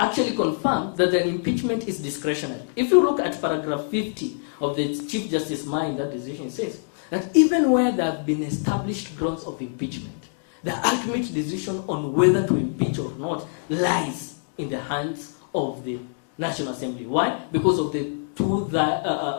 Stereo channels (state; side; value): silent; right; digital silence